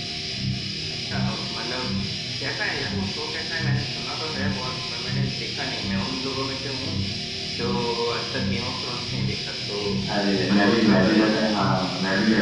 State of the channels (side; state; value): both; identical; correlation 1.00